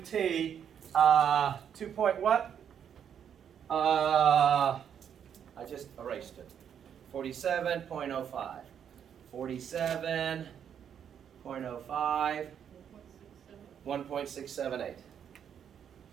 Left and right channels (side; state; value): left; quieter; 8.5 dB